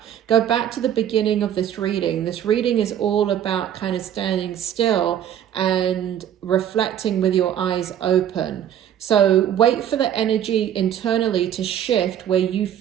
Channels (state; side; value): quieter; left; 10.2 dB